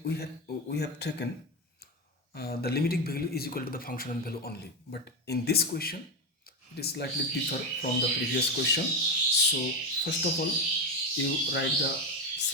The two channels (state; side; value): normal; both; correlation 0.12